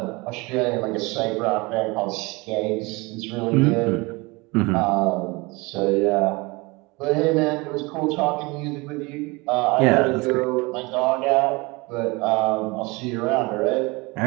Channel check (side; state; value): left; quieter; 25.1 dB